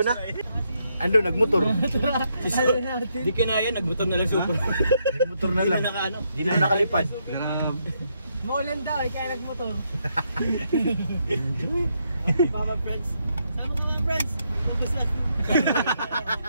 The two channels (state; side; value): inverted; both; correlation -0.77